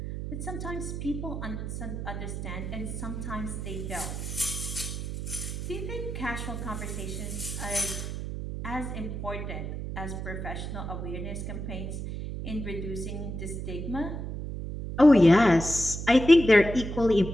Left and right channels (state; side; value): noise; right; hum, 5 dB below the sound